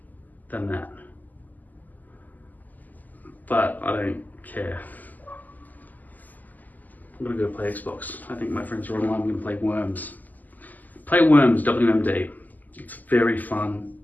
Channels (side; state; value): right; late; 0.082 ms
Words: than that. But I don't care. I'm gonna go play Xbox. I think my friends are online. I'm gonna play Worms. Play Worms, WMD. It's very fun.